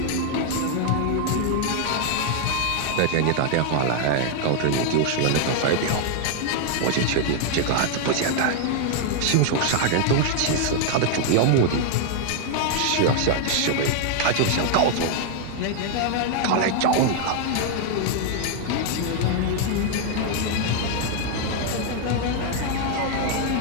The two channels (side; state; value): both; different; correlation 0.00